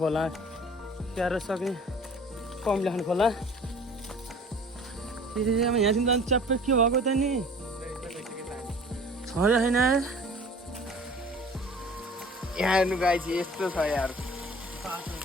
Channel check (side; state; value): both; normal; correlation 0.46